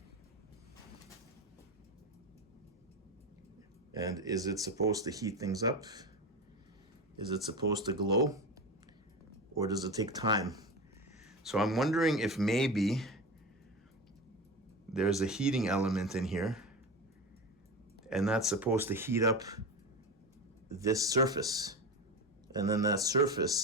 And is it supposed to heat things up? Is it supposed to glow? Or does it take time? So I'm wondering if maybe there's a heating element in here, and that's supposed to heat up this surface. And then that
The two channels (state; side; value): normal; both; correlation 0.24